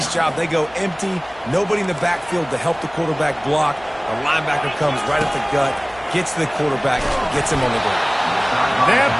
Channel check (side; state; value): left; noise; hum, 25 dB below the sound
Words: job. They go empty. Nobody in the backfield to help the quarterback block. A linebacker comes right at the gut, gets to the quarterback, gets him on the ground. That